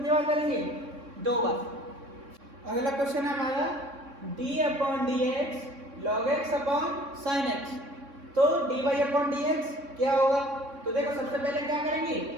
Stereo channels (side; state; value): left; late; 3.6 ms